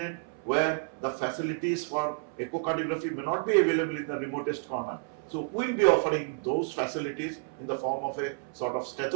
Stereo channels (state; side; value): silent; left; 58 dB below the other